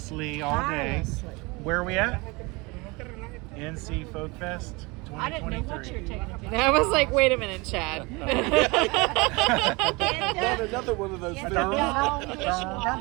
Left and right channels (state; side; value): quieter; left; 25.8 dB